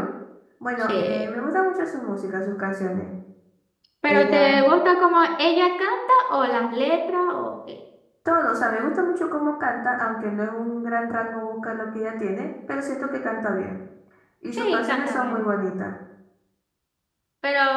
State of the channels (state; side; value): identical; both; correlation 1.00